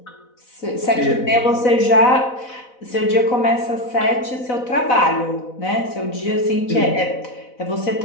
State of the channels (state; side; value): late; right; 4.0 ms